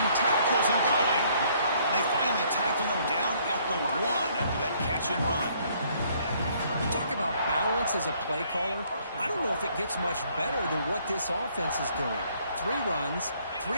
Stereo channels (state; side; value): inverted; both; correlation -0.64